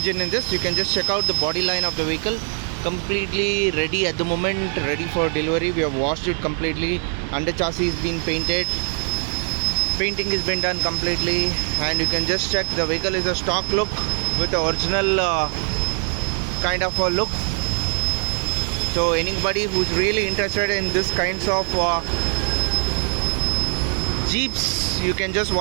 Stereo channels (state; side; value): silent; left; 55 dB below the other